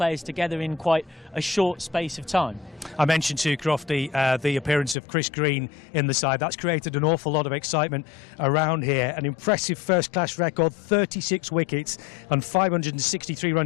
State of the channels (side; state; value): right; drops out; at 5.0 s